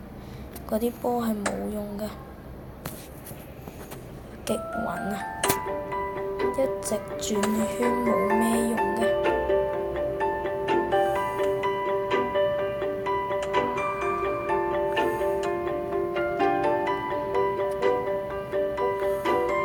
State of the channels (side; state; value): both; identical; correlation 1.00